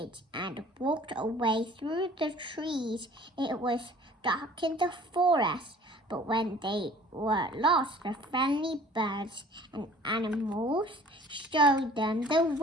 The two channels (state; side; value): normal; both; correlation 0.50